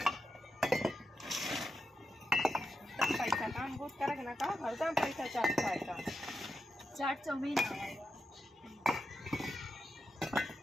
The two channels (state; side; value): normal; both; correlation 0.87